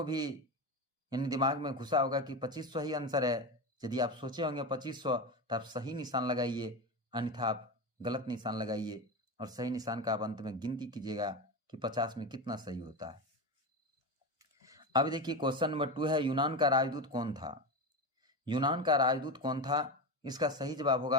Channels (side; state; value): both; normal; correlation 0.20